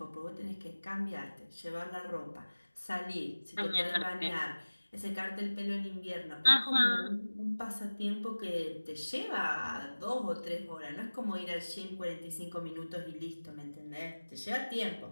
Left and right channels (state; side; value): inverted; both; correlation -1.00